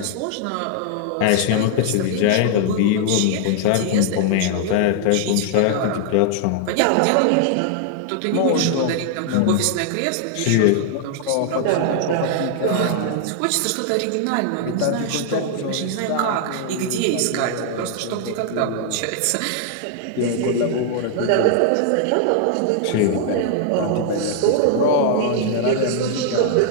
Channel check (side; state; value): both; different; correlation 0.00